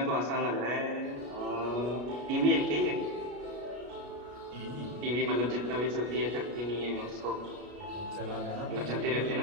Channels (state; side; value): late; left; 33 ms